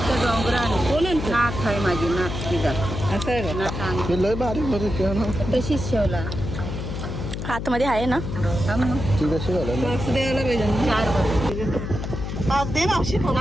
कोण आणतो? नाथ आहे माझी, नाथ तिचा. असं आहे का? हे लय बारीक बारीक आहे ना. तशीच शेवला. आतमध्ये आहे ना. ती कशी झालं ना? पाच द्यायला पाहिजे ना. पाच दे मावशी.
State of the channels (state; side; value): noise; left; hum, 5 dB below the sound